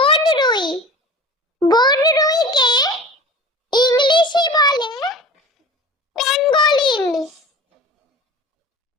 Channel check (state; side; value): normal; both; correlation 0.38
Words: বনরুইকে ইংলিশে বলে প্যাঙ্গোলিন।